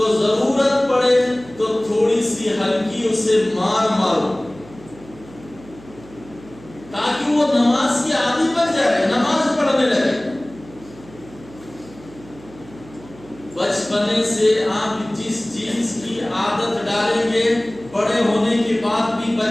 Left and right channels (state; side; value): noise; right; hum, 21 dB below the sound